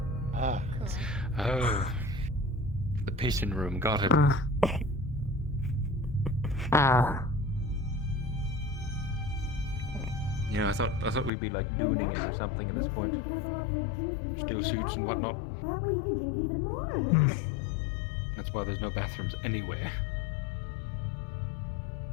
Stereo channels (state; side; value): drops out; right; at 11.3 s